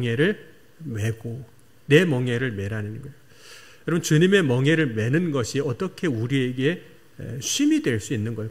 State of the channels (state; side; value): identical; both; correlation 1.00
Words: 메고 내 멍에를 메라는 거예요. 여러분 주님의 멍에를 메는 것이 어떻게 우리에게 쉼이 될 수 있는